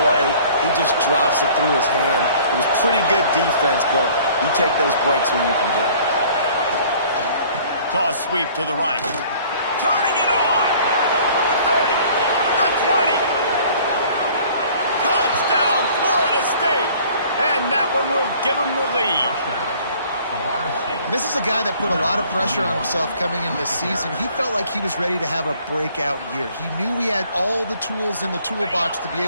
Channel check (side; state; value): both; inverted; correlation -0.53